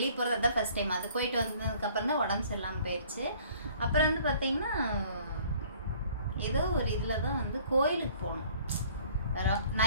போகிறது. அதுதான் ஃபர்ஸ்ட் டைம். அது போயிட்டு வந்ததுக்கப்புறம் தான் உடம்பு சரியில்லாமல் போயிடுச்சு. அப்புறம் வந்து பார்த்தீங்கன்னா ஏதோ ஒரு இதில் தான் வந்து கோயிலுக்கு போனோம்.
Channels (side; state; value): both; inverted; correlation -0.55